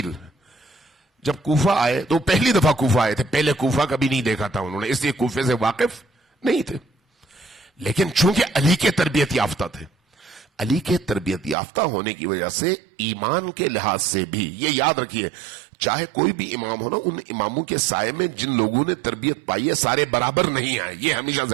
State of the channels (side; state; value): left; drops out; at 11.6 s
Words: جب کوفہ آئے تو پہلی دفعہ کوفہ آئے تھے، پہلے کوفہ کبھی نہیں دیکھا تھا انہوں نے، اس لیے کوفے سے واقف نہیں تھے. لیکن چونکہ علی کے تربیت یافتہ تھے، علی کے تربیت یافتہ ہونے کی وجہ سے ایمان کے لحاظ سے بھی یہ یاد رکھیے، چاہے کوئی بھی امام ہو نا، ان اماموں کے سائے میں جن لوگوں نے تربیت پائی ہے سارے برابر نہیں آئے. یہ ہمیشہ